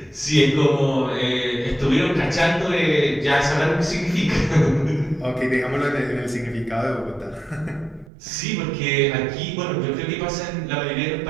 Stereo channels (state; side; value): drops out; left; at 8.1 s